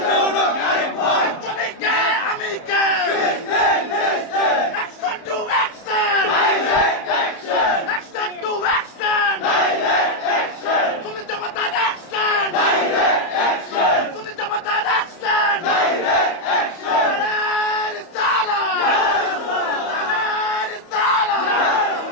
তুমি কে আমি কে action to action action to action তুমি জমাতার অ্যাকশন তুমি জমাতার অ্যাকশন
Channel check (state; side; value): late; right; 31 ms